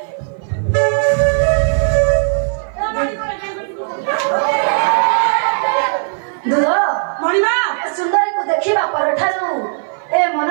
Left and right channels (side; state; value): left; silent; 56 dB below the other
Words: दूध ମଣିମା सुंदरी को देखिबा परठारु ए